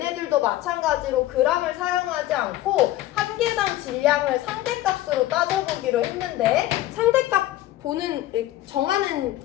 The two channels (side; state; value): right; quieter; 14.9 dB